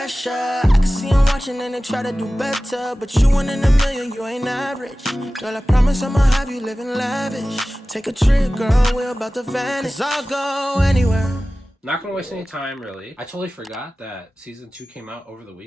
I can see I'm watching and they try to do better, but you one in a million, you ain't average. Girl, I promise I'ma have you living lavish. Take a trip, girl, we're about to vanish. 'Cause I'll go anywhere. Not gonna waste any time, really. I totally forgot that Season 2 came out over the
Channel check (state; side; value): normal; both; correlation 0.96